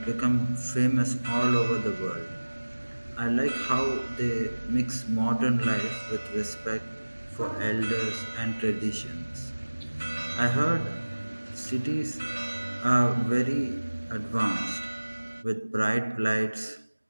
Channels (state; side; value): inverted; both; correlation -1.00